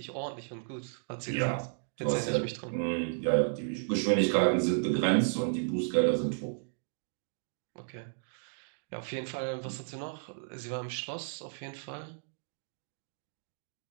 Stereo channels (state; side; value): silent; left; digital silence